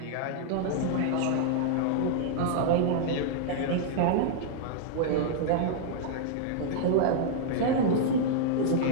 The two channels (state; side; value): different; both; correlation -0.01